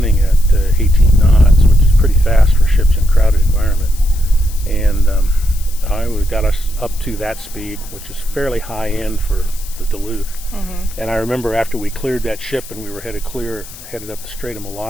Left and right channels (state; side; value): noise; left; hiss, 17 dB below the sound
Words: at 18 knots, which is pretty fast for ships in a crowded environment. And I got us up to that speed, which is fairly high end for the Duluth. And I remember after we cleared that ship and we were headed up the Strait of